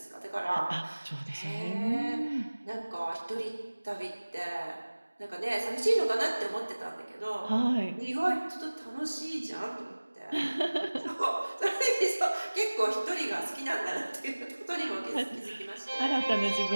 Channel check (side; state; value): both; inverted; correlation -1.00